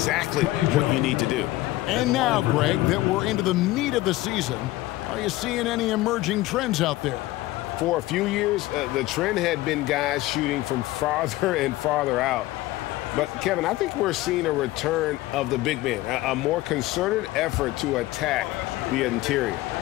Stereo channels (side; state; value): right; quieter; 17.5 dB